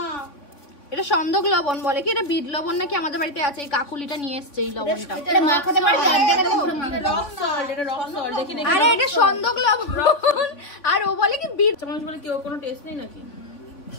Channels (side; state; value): right; late; 3.7 ms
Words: এটা সন্দক লবণ বলে কি, এটা বিট লবণ নাকি আমাদের বাড়িতে আছে। এই কাকুলিটা নিয়ে এসছে এই লবণটা। আরে এটা সন্দক লবণ, আর ও বলে কি বিট। মানুষ বলে কি, ওর কোনো টেস্ট নেই নাকি?